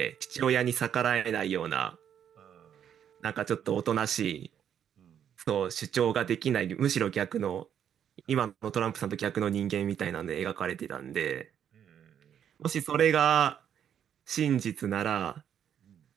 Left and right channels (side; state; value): left; quieter; 9.1 dB